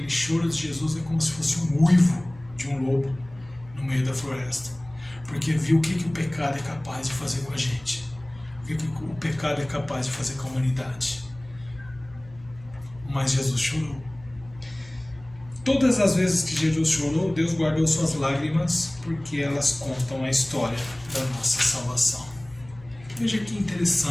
choro de Jesus é como se fosse um uivo de um lobo no meio da floresta, porque viu o que o pecado é capaz de fazer com a gente, o que o pecado é capaz de fazer com a humanidade. Mas Jesus chorou. Todas as vezes que Jesus chorou, Deus guardou suas lágrimas porque elas contam a história da nossa salvação. Veja que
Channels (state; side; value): noise; left; hum, 21 dB below the sound